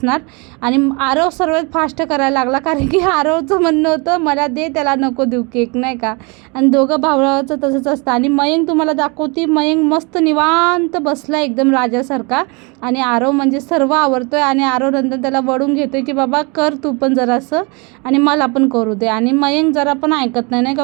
आणि आरव सर्वात फास्ट करायला लागला, कारण की आरवचं म्हणणं होतं मला दे, त्याला नको देऊ केक, नाही का. आणि दोघं भावाचं तसंच असतं. आणि मयंक तुम्हाला दाखवते, मयंक मस्त निवांत बसला एकदम राजासारखा. आणि आरव म्हणजे सर्व आवरतोय. आणि आरव नंतर त्याला वळून घेतोय की बाबा कर तू पण जरासं आणि मला पण करू दे. आणि मयंक जरा पण ऐकत नाही, नाही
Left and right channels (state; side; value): quieter; left; 30.2 dB